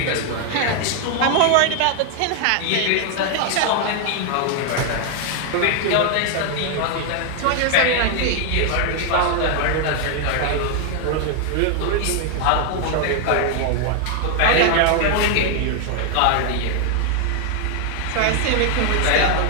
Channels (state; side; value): different; both; correlation 0.00